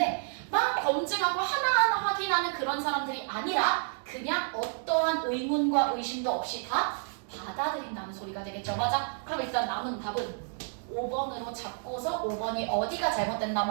막 검증하고 하나하나 확인하는 그런 사람들이 아니라 그냥 어떠한 의문과 의심도 없이 다 받아들인다는 소리가 되겠죠. 맞아? 그럼 일단 남은 답은 5번으로 잡고서 5번이 어디가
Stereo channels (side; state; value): left; silent; 58 dB below the other